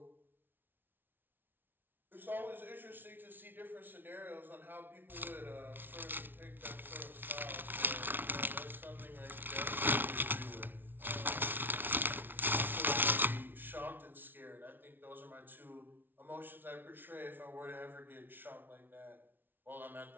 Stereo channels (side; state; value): left; late; 0.097 ms